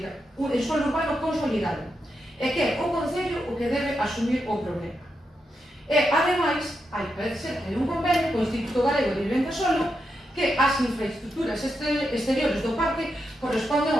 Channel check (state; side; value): normal; both; correlation 0.85